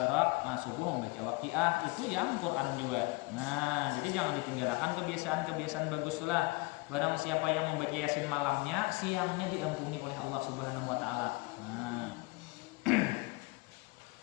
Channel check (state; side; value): quieter; right; 24.9 dB